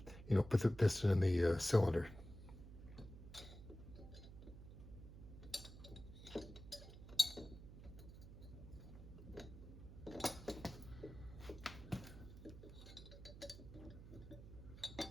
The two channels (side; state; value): right; noise; hum, 14 dB below the sound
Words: you know, put the piston in the cylinder.